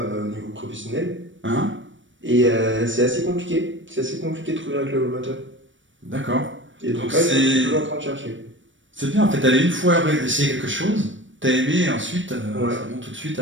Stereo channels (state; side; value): late; left; 0.56 ms